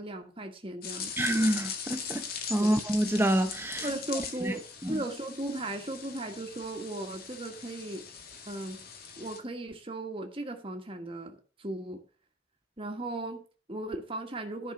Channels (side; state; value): both; normal; correlation 0.70